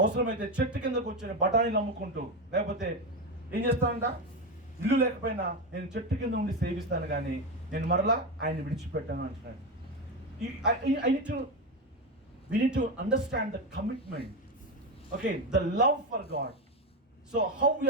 చెట్టు కిందకు వచ్చి బఠానీలు అమ్ముకుంటూ, లేకపోతే ఏం చేస్తానంట, ఇల్లు లేకపోయినా నేను చెట్టు కింద ఉండి సేవిస్తాను, కానీ నేను మరలా ఆయన్ని విడిచిపెట్టాను అంటున్నాడు. We need to understand the commitment, okay, the love for God. So how we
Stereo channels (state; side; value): normal; both; correlation 0.14